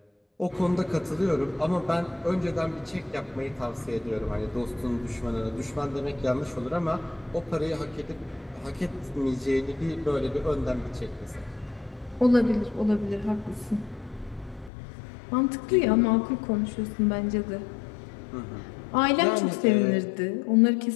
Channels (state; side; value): drops out; right; at 14.7 s